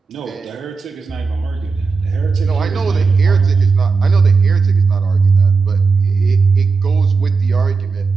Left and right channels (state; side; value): quieter; left; 4.6 dB